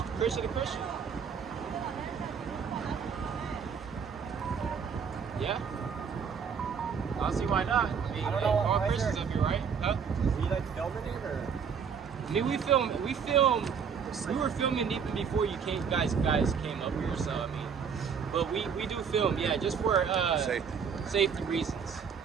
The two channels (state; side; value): quieter; left; 6.7 dB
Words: Christian to Christian. Yeah. I don't see why not. I mean, I don't hey, know, all why is Christians there- up here, right? Huh? Were you like filming it or? I mean, we were filming even before you guys came up here, so I mean, but we do film, yeah, just for safety reasons.